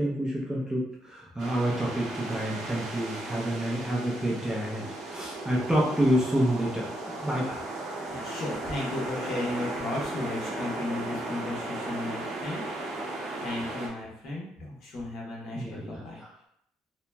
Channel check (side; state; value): both; normal; correlation 0.80